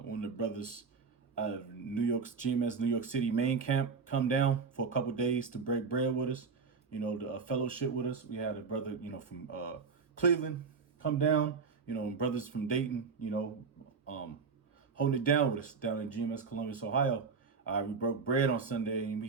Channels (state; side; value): quieter; left; 5.2 dB